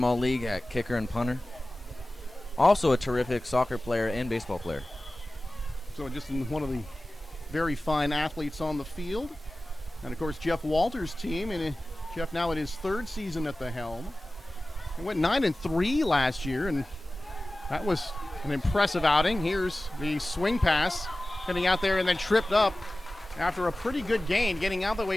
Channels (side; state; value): both; normal; correlation 0.97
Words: All-League at kicker and punter. Also a terrific soccer player and baseball player. So just one of the very fine athletes on the field. And, of course, Jeff Walters' team, and Jeff now in his third season at the helm. He went 9-3 last year, and that was an impressive outing. Here's the swing pass, getting out there and then tripped up after a pretty good gain, getting out the